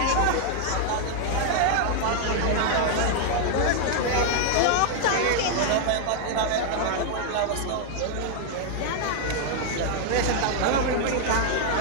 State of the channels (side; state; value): both; different; correlation 0.00